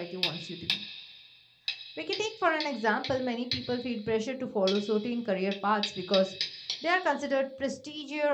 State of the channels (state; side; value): identical; both; correlation 1.00